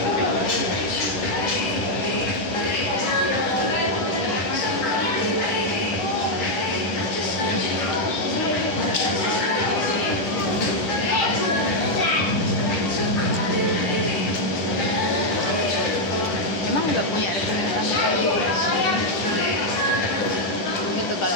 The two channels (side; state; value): right; late; 10 ms